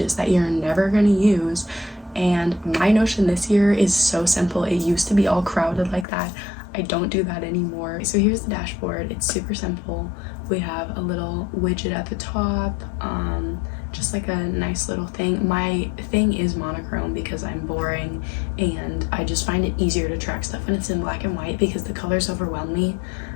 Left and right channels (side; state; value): right; drops out; at 6.1 s